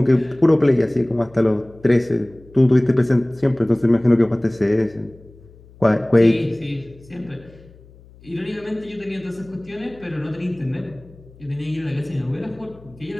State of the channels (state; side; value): noise; left; hum, 24 dB below the sound